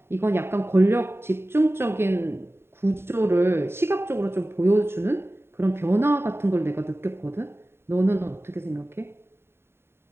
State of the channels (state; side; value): late; left; 0.11 ms